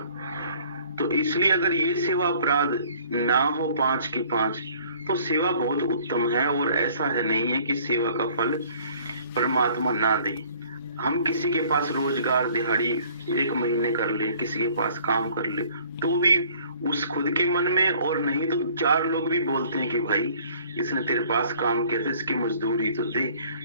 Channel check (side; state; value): both; inverted; correlation -0.56